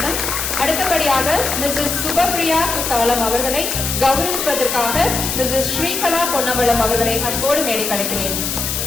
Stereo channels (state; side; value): noise; left; hiss, 2 dB below the sound